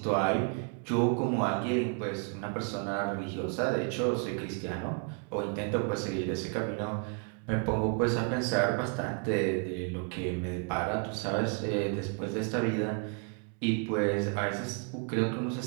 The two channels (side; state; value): left; quieter; 38.4 dB